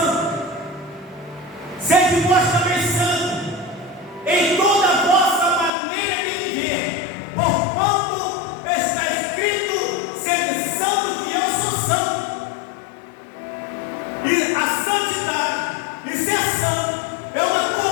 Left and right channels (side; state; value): right; drops out; at 5.7 s